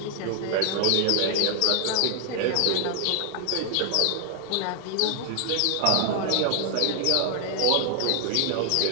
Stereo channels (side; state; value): both; different; correlation 0.00